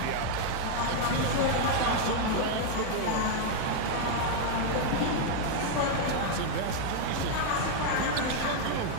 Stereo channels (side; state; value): both; different; correlation 0.00